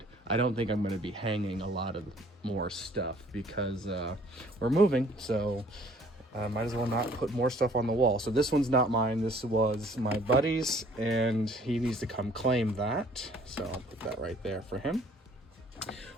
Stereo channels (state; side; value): normal; both; correlation 0.57